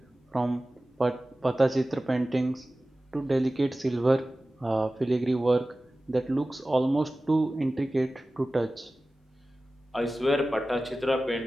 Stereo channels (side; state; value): both; normal; correlation 0.96